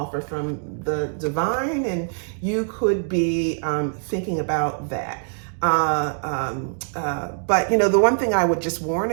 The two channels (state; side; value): silent; left; digital silence